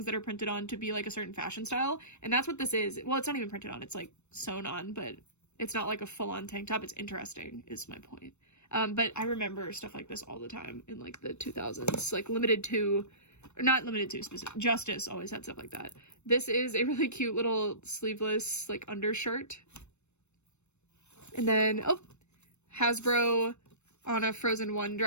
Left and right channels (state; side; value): late; right; 0.82 ms